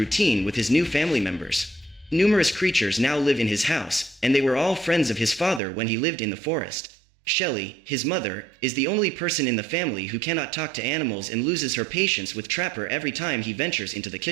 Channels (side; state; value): left; drops out; at 5.6 s